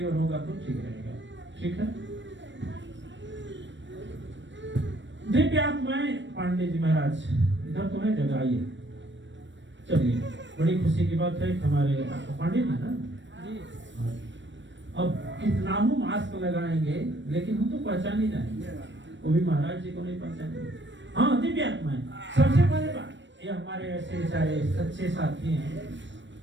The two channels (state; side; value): late; left; 0.53 ms